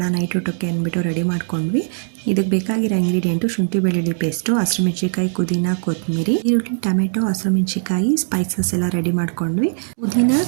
ನೈಟ್ ಊಟಕ್ಕೆ ಅಂದ್ಬಿಟ್ಟು ರೆಡಿ ಮಾಡ್ಕೊಂಡ್ವಿ. ಇದಕ್ಕೆ ಬೇಕಾಗಿರೋ ಇಂಗ್ರೀಡಿಯೆಂಟು ಶುಂಠಿ ಬೆಳ್ಳುಳ್ಳಿ ಪೇಸ್ಟು, ಹಸಿರುಮೆಣ್ಸಿಕಾಯಿ, ಪುದೀನ, ಕೊತ್ತಂಬರಿ, ಈರುಳ್ಳಿ, ಟೊಮೆಟೊ, ಹಸಿರುಮೆಣ್ಸಿಕಾಯಿ, ಸ್ಪೈಸಸ್ ಎಲ್ಲ ರೆಡಿ ಮಾಡ್ಕೊಂಡ್ವಿ. ಪುದೀನ,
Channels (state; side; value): silent; left; digital silence